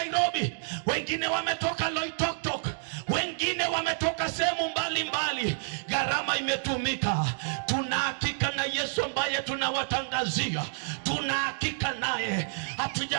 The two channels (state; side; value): silent; left; digital silence